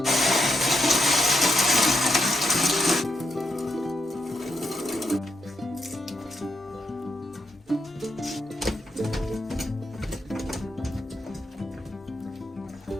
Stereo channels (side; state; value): both; normal; correlation 0.81